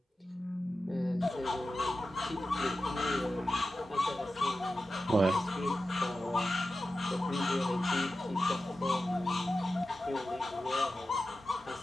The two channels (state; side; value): normal; both; correlation 0.93